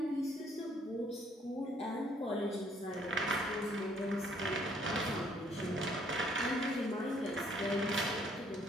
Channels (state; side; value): normal; both; correlation 0.65